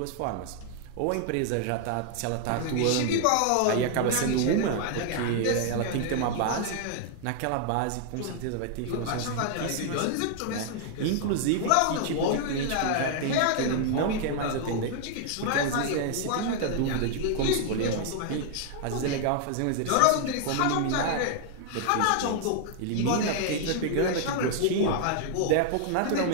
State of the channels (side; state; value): both; different; correlation 0.00